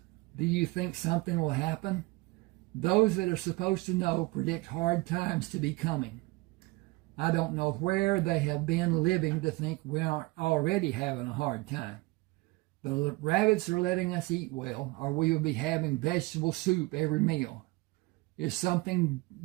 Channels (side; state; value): left; quieter; 22.9 dB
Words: Do you think something will happen? Those that are supposed to know predict hard times to be coming. I don't know where they have been living to think we aren't already having a hard time. The rabbits are letting us eat well, or we will be having vegetable soup every meal. If something